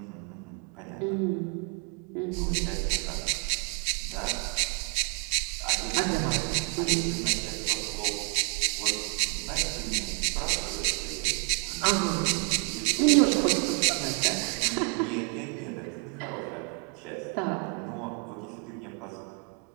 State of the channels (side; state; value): left; quieter; 35.8 dB